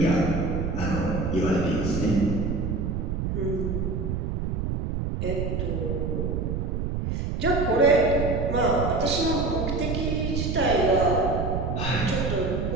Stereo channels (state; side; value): noise; right; rumble, 1 dB below the sound